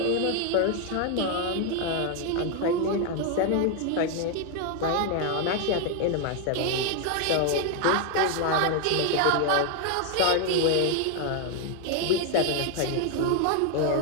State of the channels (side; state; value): both; different; correlation 0.01